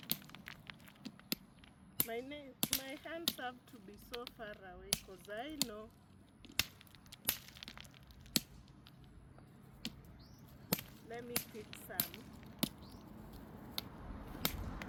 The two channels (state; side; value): identical; both; correlation 1.00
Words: My hands have to be so far away because I know let me pick some.